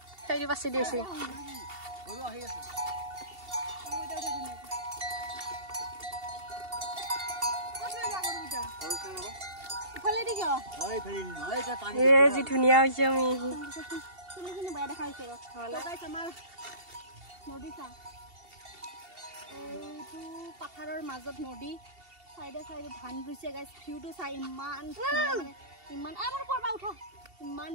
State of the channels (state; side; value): late; left; 2.7 ms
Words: সেই বাছি দিছে গৰু আহি আছে। जी धुनिया হৈছে আমি শুনি বাই দেখাইছে গাইস আমাৰ নদী চা। এইটো পাথাৰৰ মাজত নদী সাইডে সাইডে ধান ৰুইছে গাইস। ভিউটো চাই ইমান মানে ইমান আমাৰ পৰবা উঠা ইমান